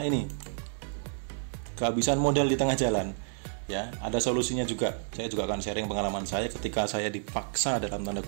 ini, kehabisan modal di tengah jalan. Ya, ada solusinya juga. Saya juga akan sharing pengalaman saya ketika saya dipaksa, dalam tanda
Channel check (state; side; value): silent; left; digital silence